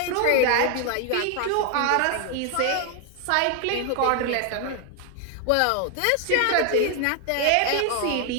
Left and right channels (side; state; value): both; different; correlation 0.00